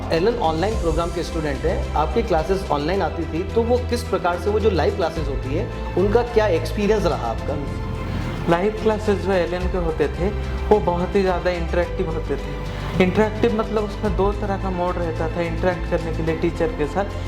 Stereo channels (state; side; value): identical; both; correlation 1.00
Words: एलन ऑनलाइन प्रोग्राम के स्टूडेंट हैं, आपकी क्लासेस ऑनलाइन आती थी, तो वो किस प्रकार से, वो जो लाइव क्लासेस होती है उनका क्या एक्सपीरियंस रहा आपका? लाइव क्लासेस जो एलन के होते थे वो बहुत ही ज़्यादा इंटरेक्टिव होते थे। इंटरेक्टिव मतलब उसमें दो तरह का मोड रहता था इंटरेक्ट करने के लिए टीचर के